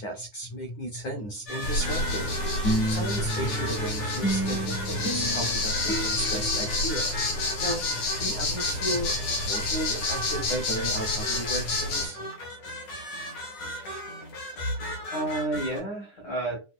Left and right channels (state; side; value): late; right; 9.7 ms